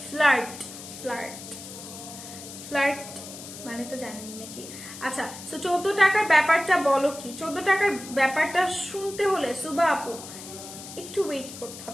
ফ্লার্ট ফ্লার্ট ফ্লার্ট মানে তো জানেন নাকি? আচ্ছা তো 14 টাকার ব্যাপারটা বলো কি? 14 টাকার ব্যাপারটা শুনতে হলে সুবা আপু একটু ওয়েট করতে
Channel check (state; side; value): noise; left; hiss, 13 dB below the sound